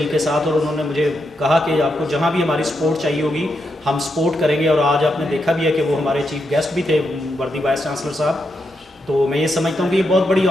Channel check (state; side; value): normal; both; correlation 0.83